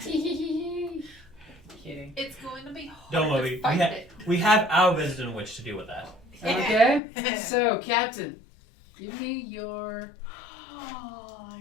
It's going to be hard Don't worry. to fight it. We have our resident witch to deal with that. Okay. So, Captain, give me your. Oh,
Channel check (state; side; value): drops out; right; at 7.0 s